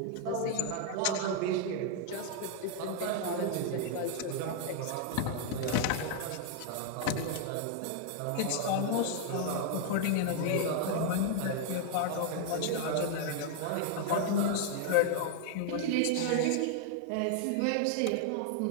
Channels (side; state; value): both; different; correlation 0.00